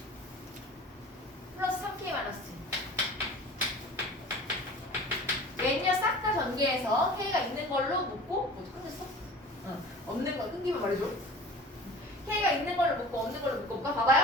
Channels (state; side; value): normal; both; correlation 0.41